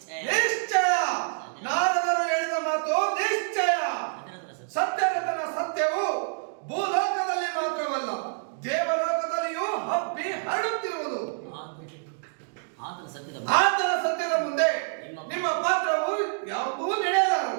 ನಿಶ್ಚಯ ನಾರದರು ಹೇಳಿದ ಮಾತು ನಿಶ್ಚಯ. ಸತ್ಯರತನ ಸತ್ಯವು ಭೂಲೋಕದಲ್ಲಿ ಮಾತ್ರವಲ್ಲ ದೇವಲೋಕದಲ್ಲಿಯೂ ಹಬ್ಬಿ ಹರಡುತ್ತಿರುವುದು. ಆತನ ಸತ್ಯದ ಮುಂದೆ ನಿಮ್ಮ ಪಾತ್ರವು ಯಾವುದೂ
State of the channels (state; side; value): silent; left; digital silence